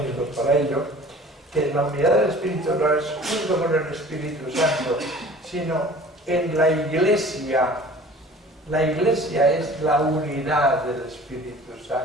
para ello, que la unidad del Espíritu no es junto con el Espíritu Santo, sino en la Iglesia. La Iglesia es la unidad del Espíritu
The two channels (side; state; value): both; normal; correlation 0.46